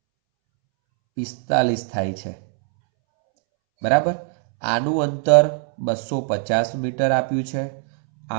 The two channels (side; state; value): left; silent; 65 dB below the other